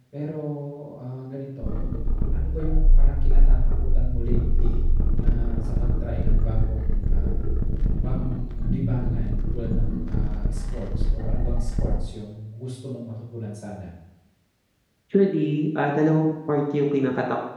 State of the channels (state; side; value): identical; both; correlation 1.00